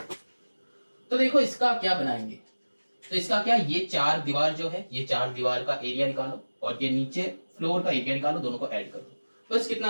तो देखो इसका क्या बनाएंगे, तो इसका क्या, ये 4 दीवार जो है, ये 4 दीवार का एरिया निकालो और ये नीचे फ्लोर का एरिया निकालो, दोनों को ऐड कर दो, बस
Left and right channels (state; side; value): inverted; both; correlation -1.00